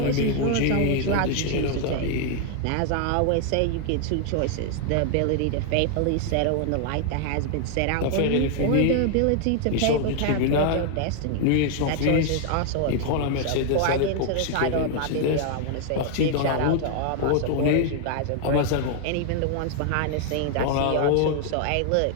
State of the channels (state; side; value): different; both; correlation 0.00